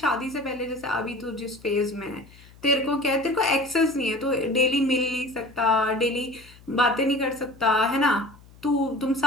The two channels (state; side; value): noise; left; hum, 24 dB below the sound